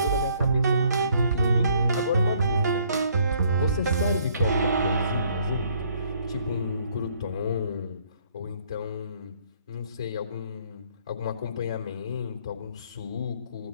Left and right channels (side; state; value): both; inverted; correlation -0.64